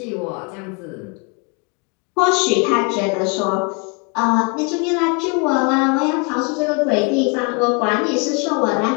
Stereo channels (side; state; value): right; quieter; 33.4 dB